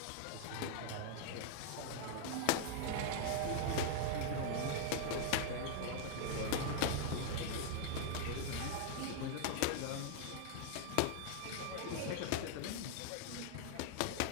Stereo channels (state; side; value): different; both; correlation -0.01